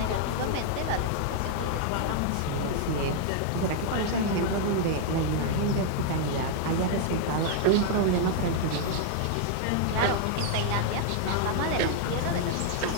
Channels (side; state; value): both; different; correlation -0.01